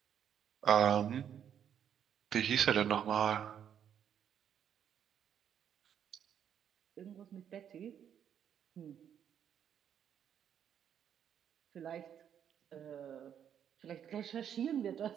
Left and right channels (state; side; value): quieter; left; 9.0 dB